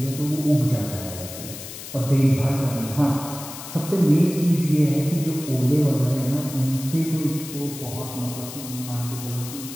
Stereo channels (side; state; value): left; noise; hiss, 11 dB below the sound